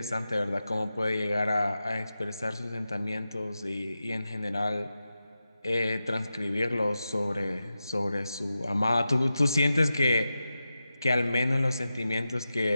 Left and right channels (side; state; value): both; inverted; correlation -0.92